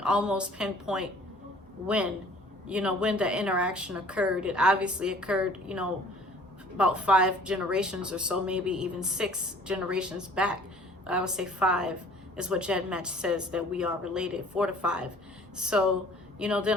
almost pinpoint when, you know, when the interaction occurred. It obviously occurred, you know, about 5 generations or so, maybe even 6 generations back. I would say 5 is what GEDmatch says that we are related, 4 to 5. So, you know,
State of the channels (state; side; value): normal; both; correlation 0.52